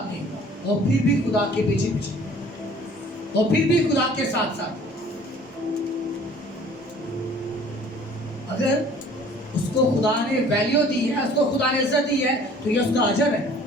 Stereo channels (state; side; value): normal; both; correlation 0.52